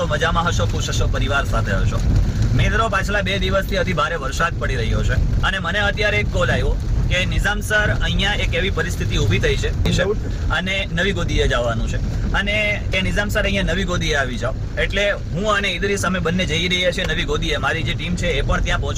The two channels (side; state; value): both; identical; correlation 1.00